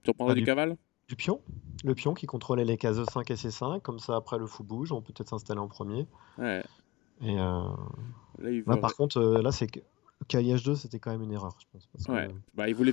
Tu reprendrais Bah, du cavale? du pion. Le pion qui contrôlait les cases E5 et C5. Comme ça, après, le fou bouge. On peut peut-être s'installer en premier. Ouais. Et Là, il là, veut... par contre, là, c'est que cavalier H2, c'était quand même une erreur, je pense. Parce Ouais. que... Bah, il voulait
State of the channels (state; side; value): quieter; right; 19.8 dB